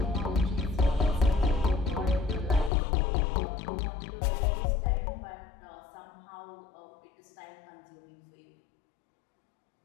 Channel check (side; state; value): right; drops out; at 2.7 s